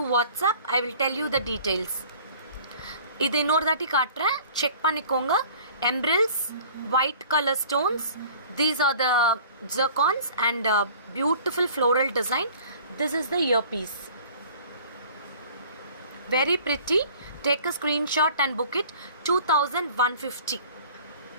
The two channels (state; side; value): inverted; both; correlation -0.48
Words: WhatsApp. I will tell you the details. இது இன்னொரு தாட்டி காட்டுறேன், check பண்ணிக்கோங்க. Emeralds, white color stones. These are the zircons and beautiful floral design. This is the earpiece. Very pretty. Take a screenshot and book it. 2150.